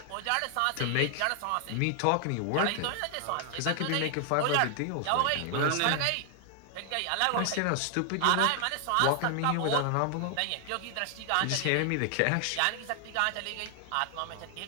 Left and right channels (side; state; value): both; different; correlation 0.00